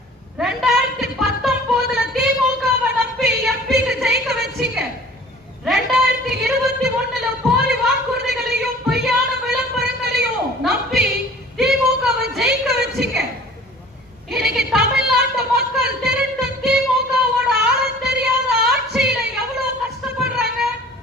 2019 திமுகவை நம்பி எம்பிக்கு ஜெயிக்க வச்சீங்க. 2021 போலி வாக்குறுதிகளையும் பொய்யான விளம்பரங்களையும் நம்பி திமுகவை ஜெயிக்க வச்சீங்க. இன்னைக்கு தமிழ்நாட்டு மக்கள் திருட்டு திமுகவோட ஆழம் தெரியாத ஆட்சியில எவ்வளவு கஷ்டப்படுறாங்க,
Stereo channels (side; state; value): both; normal; correlation 0.48